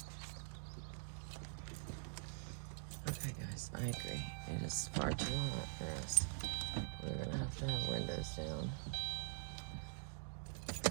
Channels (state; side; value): silent; left; digital silence